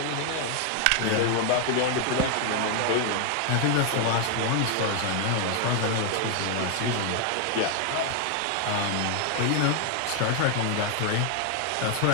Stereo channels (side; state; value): both; different; correlation 0.00